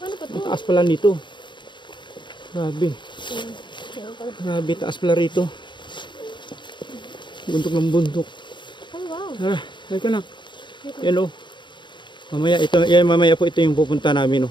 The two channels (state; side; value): late; right; 0.23 ms